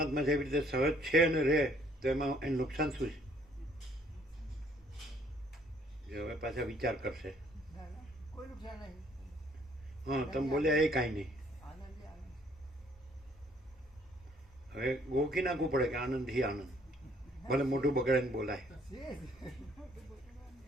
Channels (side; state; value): both; normal; correlation 0.63